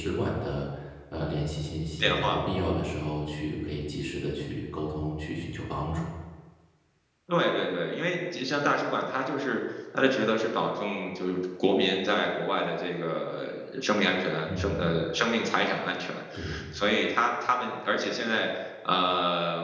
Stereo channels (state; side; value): identical; both; correlation 1.00